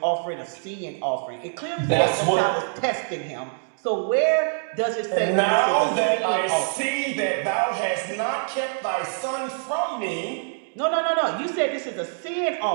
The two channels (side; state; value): left; silent; digital silence